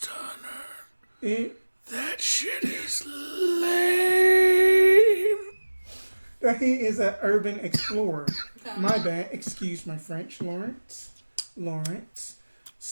hunter. it, That shit is lame. that he is an urban explorer. Okay. My bad. Excuse my French, Lawrence.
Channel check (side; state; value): both; inverted; correlation -1.00